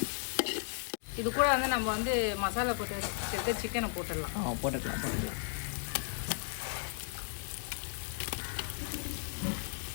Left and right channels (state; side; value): silent; right; digital silence